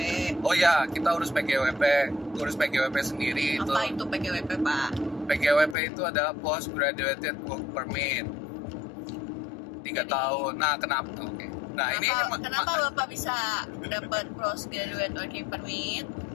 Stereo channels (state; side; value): drops out; right; at 5.8 s